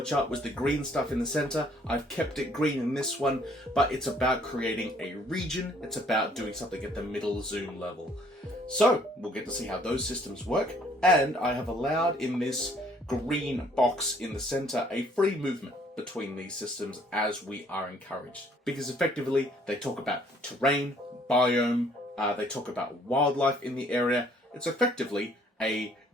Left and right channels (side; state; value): both; normal; correlation 0.61